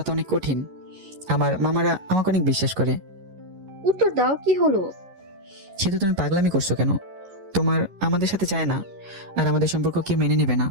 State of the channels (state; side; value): late; left; 11 ms